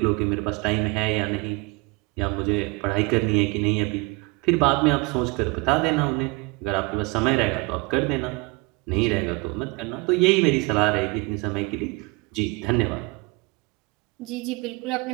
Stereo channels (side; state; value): left; quieter; 26.6 dB